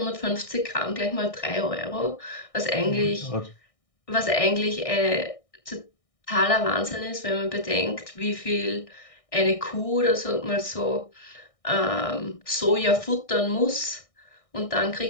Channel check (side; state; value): right; late; 1.6 ms